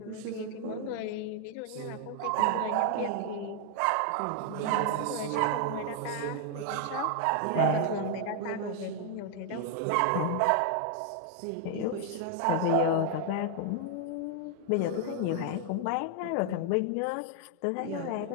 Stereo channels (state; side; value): different; both; correlation 0.00